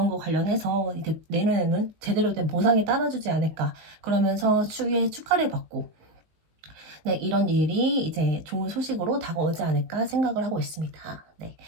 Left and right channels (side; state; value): left; late; 19 ms